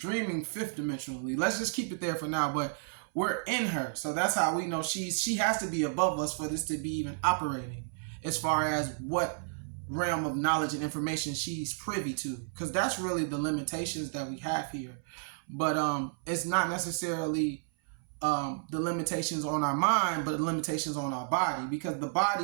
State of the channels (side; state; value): left; silent; 57 dB below the other